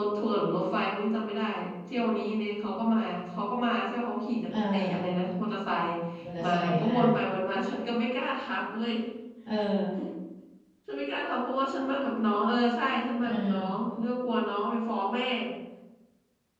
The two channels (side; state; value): both; identical; correlation 1.00